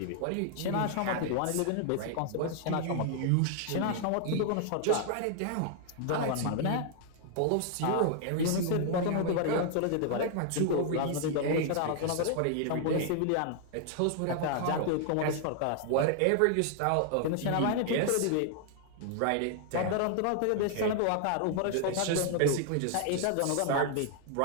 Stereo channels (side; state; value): both; different; correlation 0.00